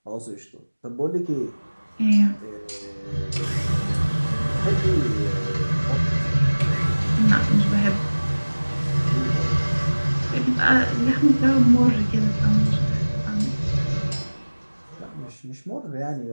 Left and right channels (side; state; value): both; inverted; correlation -1.00